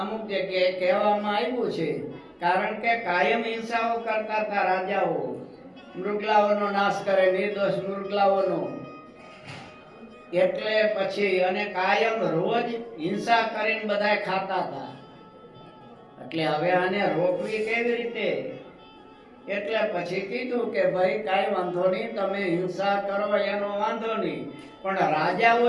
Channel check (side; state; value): both; identical; correlation 1.00